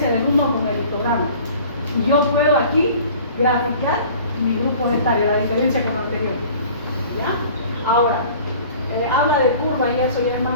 del uno con el histograma. Y yo puedo aquí graficar mi grupo etarios, la diferencia con lo anterior. ¿Ya? Ahora, habla de curva y eso ya es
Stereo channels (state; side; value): inverted; both; correlation -0.47